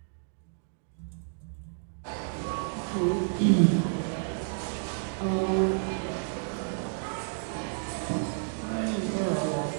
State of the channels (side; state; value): left; silent; digital silence